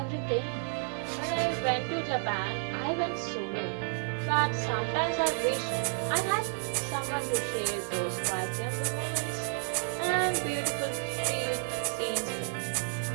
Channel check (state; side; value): silent; left; 57 dB below the other